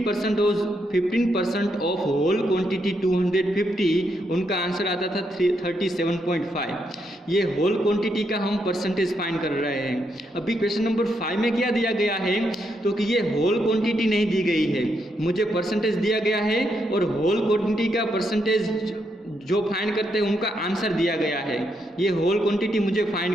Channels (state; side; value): normal; both; correlation 0.79